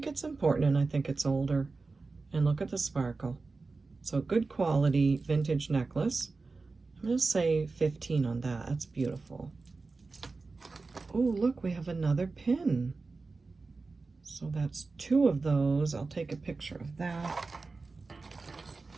it's important and I think it's older. And look at the sparkle. So good quality vintage necklace. I'm going to say 15 on that. That's beautiful. Oh, look, we have another pin. So that's 2 of those. I'll take a picture of that.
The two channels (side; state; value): left; quieter; 3.9 dB